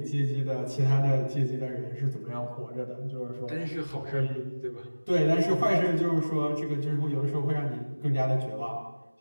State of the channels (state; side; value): inverted; both; correlation -1.00